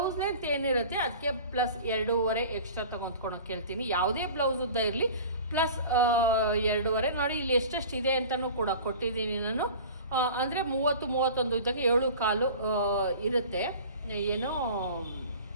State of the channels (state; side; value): inverted; both; correlation -0.40